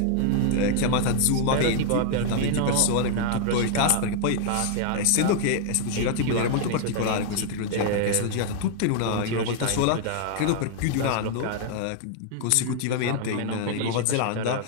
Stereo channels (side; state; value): both; different; correlation 0.00